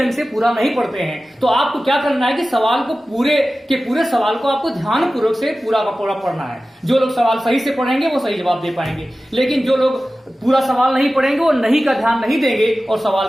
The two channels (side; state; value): both; normal; correlation 0.95